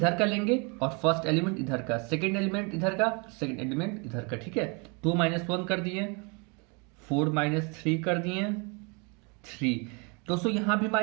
का लेंगे और फर्स्ट एलिमेंट इधर का, सेकेंड एलिमेंट इधर का, सेकेंड एलिमेंट इधर का। ठीक है, 2 -1 कर दिए, 4 -3 कर दिए, 3। दोस्तों यहां भी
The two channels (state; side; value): quieter; left; 32.4 dB